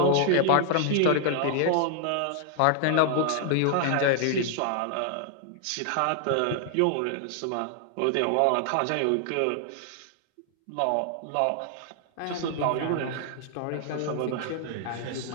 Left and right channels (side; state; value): both; different; correlation 0.00